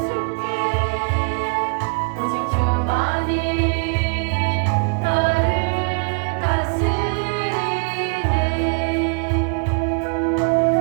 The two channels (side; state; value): left; quieter; 37.7 dB